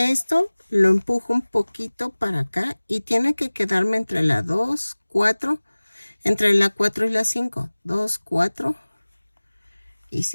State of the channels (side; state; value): both; inverted; correlation -1.00